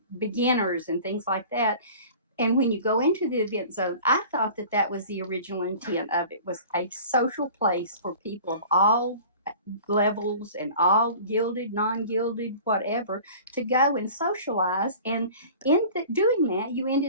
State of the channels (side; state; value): both; inverted; correlation -0.43